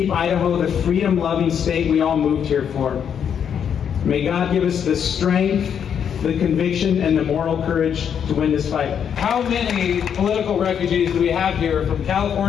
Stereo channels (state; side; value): quieter; right; 8.1 dB